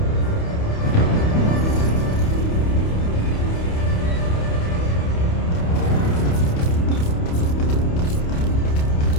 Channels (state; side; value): late; right; 28 ms